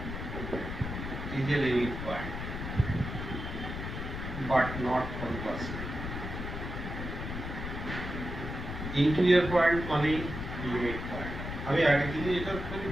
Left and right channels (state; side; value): noise; left; rumble, 6 dB below the sound